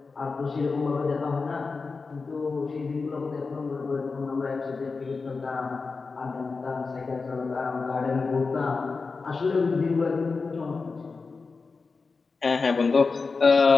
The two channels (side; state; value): right; quieter; 4.4 dB